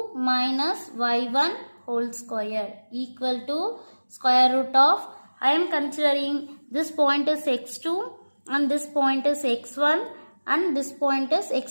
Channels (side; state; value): both; inverted; correlation -1.00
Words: minus y1 whole square equal to square root of, I am considering this point is x2 and this point is x1 and this point is